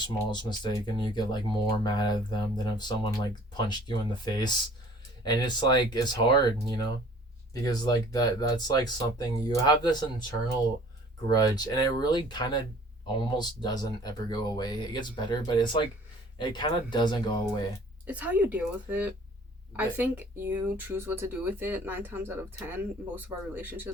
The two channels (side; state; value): both; normal; correlation 0.51